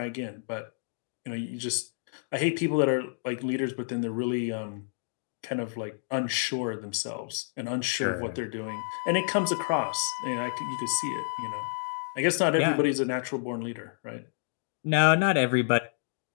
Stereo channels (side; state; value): right; silent; digital silence